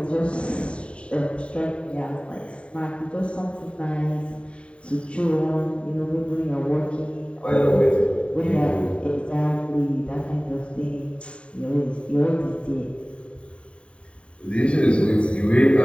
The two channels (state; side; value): late; right; 0.058 ms